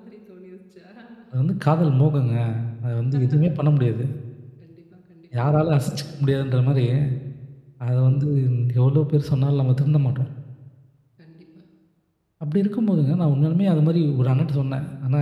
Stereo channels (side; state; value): both; identical; correlation 1.00